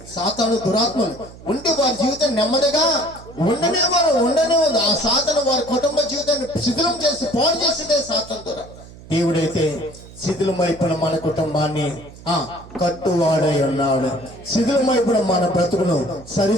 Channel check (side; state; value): right; noise; hum, 19 dB below the sound